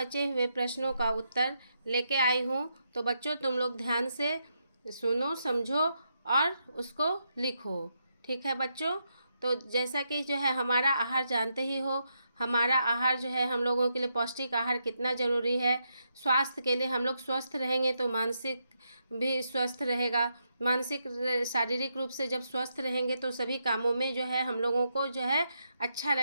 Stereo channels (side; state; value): both; inverted; correlation -0.81